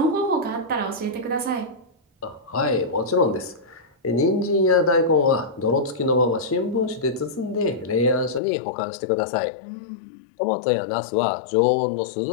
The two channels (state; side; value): drops out; right; at 8.4 s